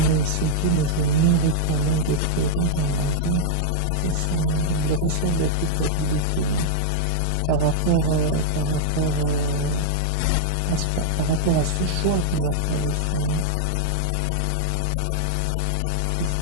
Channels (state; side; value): different; both; correlation -0.01